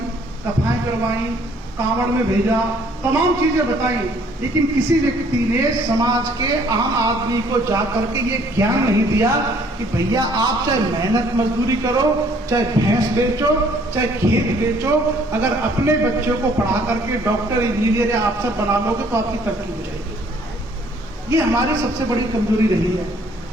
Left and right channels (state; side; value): normal; both; correlation 0.61